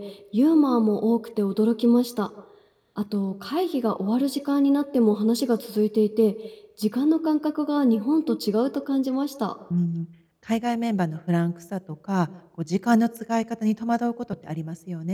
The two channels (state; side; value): identical; both; correlation 1.00